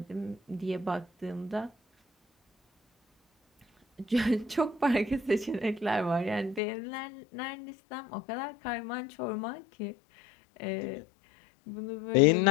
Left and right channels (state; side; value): drops out; right; at 6.6 s